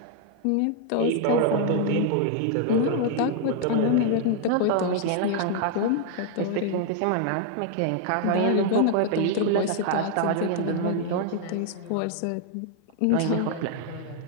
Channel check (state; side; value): different; both; correlation 0.00